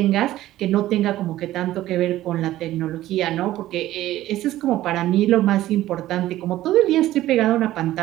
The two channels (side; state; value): left; quieter; 14.8 dB